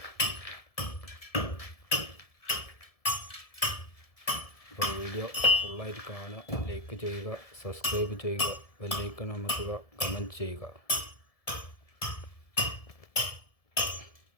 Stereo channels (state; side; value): late; right; 1.7 ms